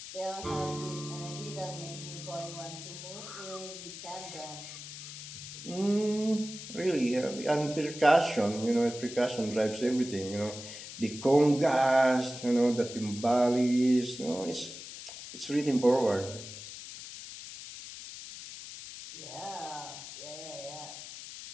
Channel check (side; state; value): left; noise; hiss, 11 dB below the sound